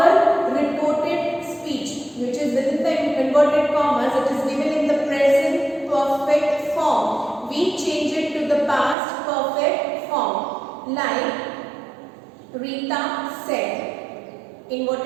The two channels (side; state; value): left; drops out; at 9.0 s